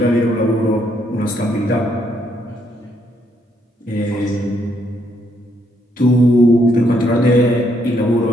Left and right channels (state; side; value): normal; both; correlation 0.73